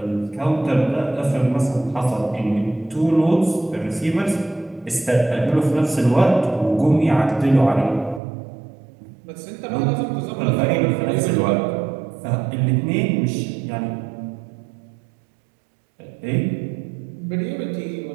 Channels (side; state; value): left; drops out; at 8.2 s